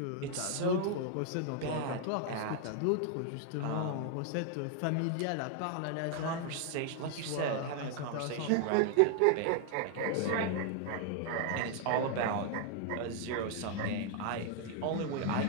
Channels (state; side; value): different; both; correlation 0.00